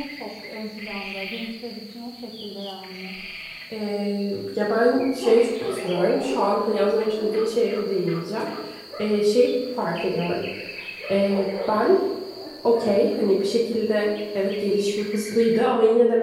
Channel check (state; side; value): identical; both; correlation 1.00